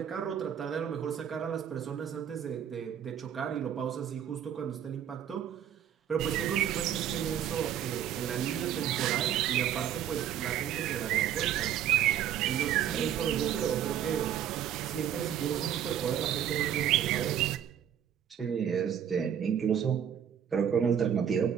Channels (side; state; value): left; quieter; 9.6 dB